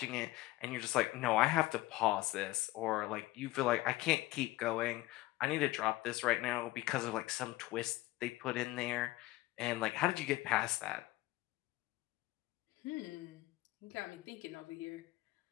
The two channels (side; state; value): right; quieter; 18.4 dB